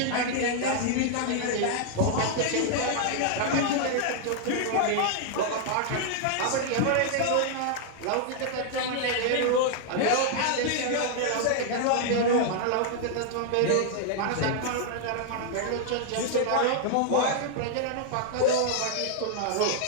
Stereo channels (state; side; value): different; both; correlation -0.01